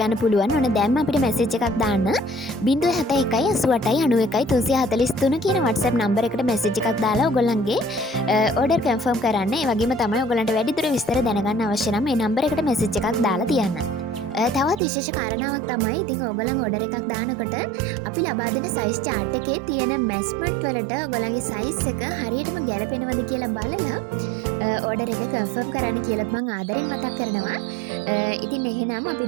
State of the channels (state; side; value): drops out; left; at 14.8 s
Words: පුළුවන්. ඔන්න දැන්ම අපිට මැසේජ් එකක් දාන්න 071889343 කියන WhatsApp නම්බර් එකට මැසේජ් එකක් දාලා ඕගොල්ලන්ගේ ඕඩර් කන්ෆර්ම් කරන්න. ඒ වගේම තමයි ඕගොල්ලන්ට වැඩිදුර විස්තර දැනගන්න අවශ්‍ය නම් මේ නම්බර් එකට මැසේජ් එකක් දාලා තියන්න. තවත් විශේෂ කාරණාවක් තමයි ඉතින් ඕගොල්ලන් ඕඩර් එකක් දානකොට අපි ලබා දෙන සයිස් chart එකේ තියෙන මෙෂර්මන්ට් වලට ඕගොල්ලන්ගේ සයිස් එක හරියටම ගැලපෙනවද කියලා බලලා ඕඩර් එක කන්ෆර්ම් කරන්න කියලාත් මම ආදරෙන් මතක් කරනවා. ඉතින් එහෙනම් අපි